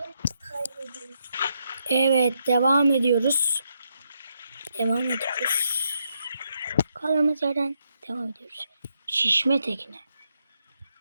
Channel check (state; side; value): inverted; both; correlation -0.79